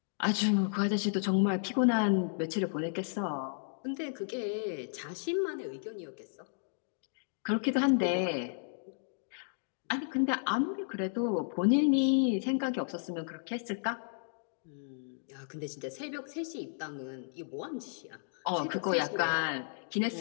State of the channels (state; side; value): silent; right; digital silence